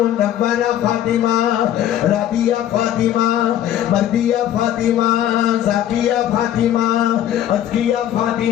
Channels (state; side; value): quieter; right; 11.4 dB